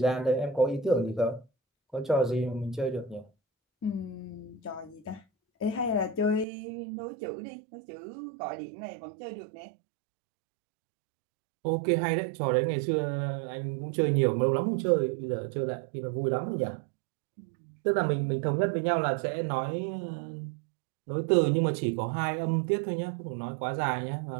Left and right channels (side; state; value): left; drops out; at 6.5 s